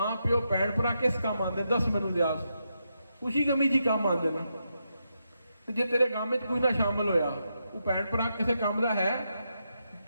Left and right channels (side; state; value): both; inverted; correlation -0.83